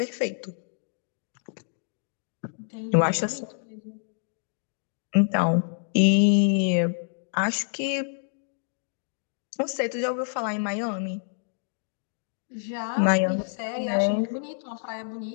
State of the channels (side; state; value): right; silent; digital silence